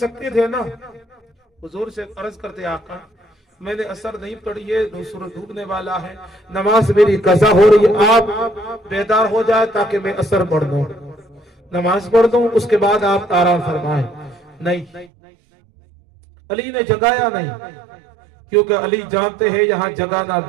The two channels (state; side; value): drops out; left; at 15.1 s